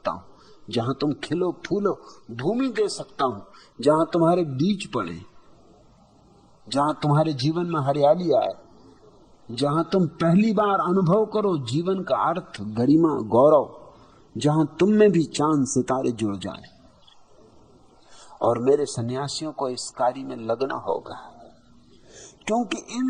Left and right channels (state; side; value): identical; both; correlation 1.00